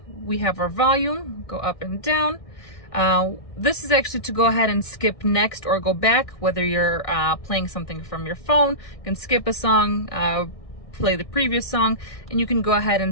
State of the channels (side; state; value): right; late; 1.6 ms